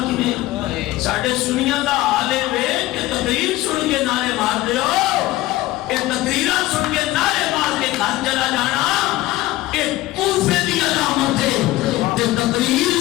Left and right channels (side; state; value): right; quieter; 17.1 dB